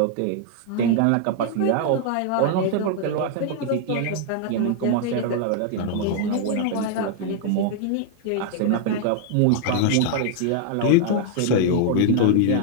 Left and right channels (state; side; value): different; both; correlation 0.00